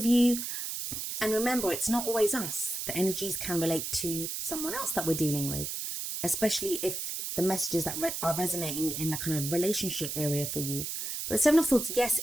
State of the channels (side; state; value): right; noise; hiss, 4 dB below the sound